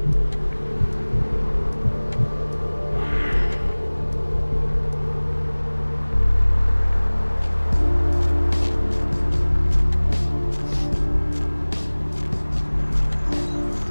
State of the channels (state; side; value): inverted; both; correlation -1.00